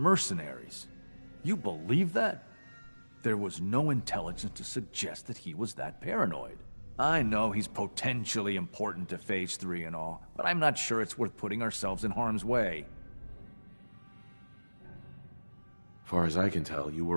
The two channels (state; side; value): inverted; both; correlation -1.00